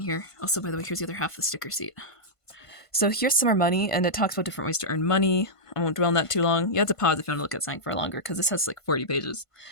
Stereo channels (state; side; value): late; right; 1.5 ms